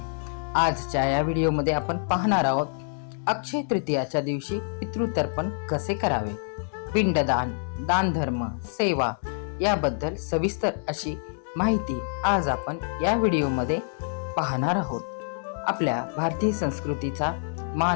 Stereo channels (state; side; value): silent; right; digital silence